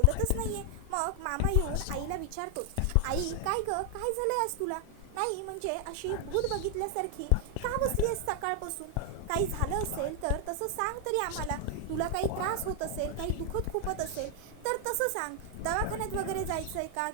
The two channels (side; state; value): both; different; correlation 0.00